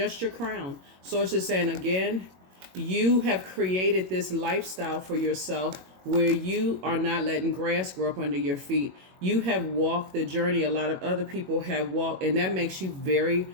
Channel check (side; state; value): left; late; 21 ms